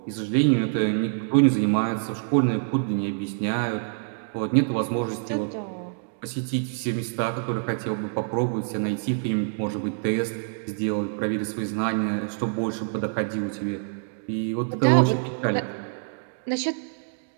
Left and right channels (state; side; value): silent; left; digital silence